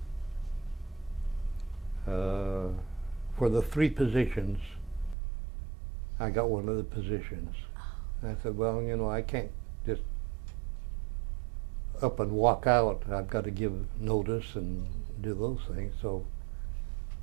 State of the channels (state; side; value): drops out; left; at 5.2 s